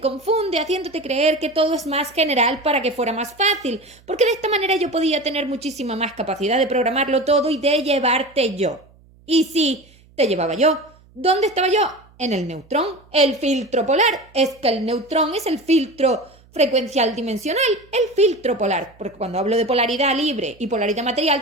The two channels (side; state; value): right; noise; hum, 28 dB below the sound